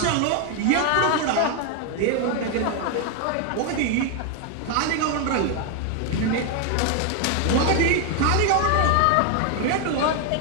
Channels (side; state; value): both; different; correlation 0.01